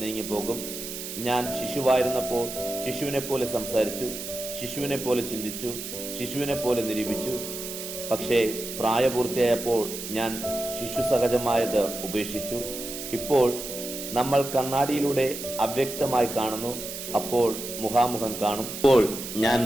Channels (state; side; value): noise; right; hiss, 8 dB below the sound